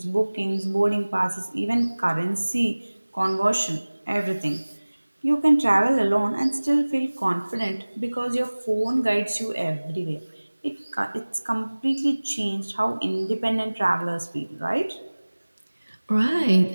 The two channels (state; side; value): inverted; both; correlation -1.00